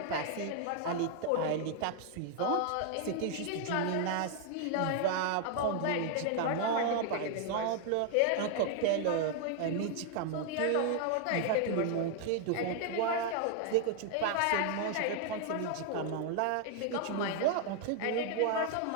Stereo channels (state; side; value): different; both; correlation 0.00